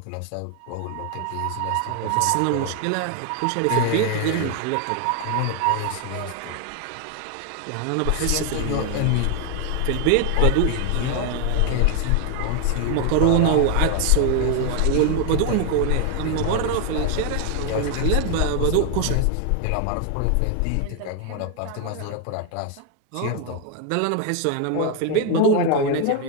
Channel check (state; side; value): different; both; correlation 0.01